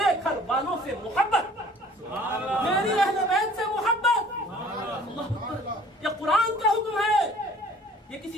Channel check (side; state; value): both; normal; correlation 0.52